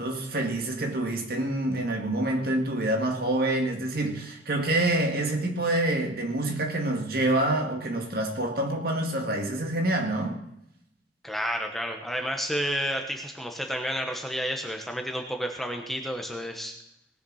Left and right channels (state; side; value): normal; both; correlation 0.43